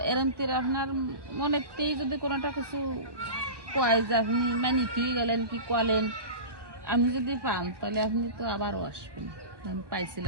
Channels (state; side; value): late; left; 1.2 ms